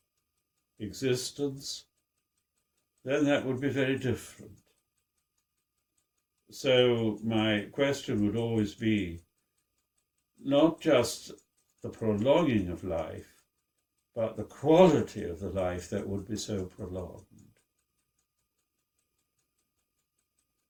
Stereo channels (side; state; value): both; identical; correlation 1.00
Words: existence, then that would be very different. So my question would always be not just the prolonging of life, but the quality of the life that would be so prolonged.